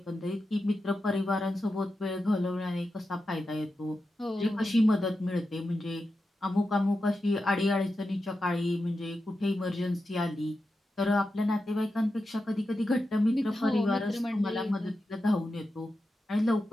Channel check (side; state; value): both; normal; correlation 0.90